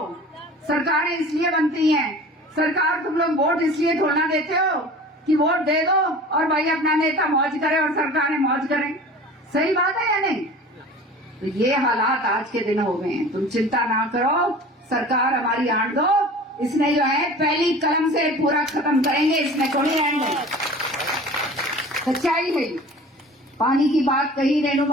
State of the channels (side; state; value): both; normal; correlation 0.41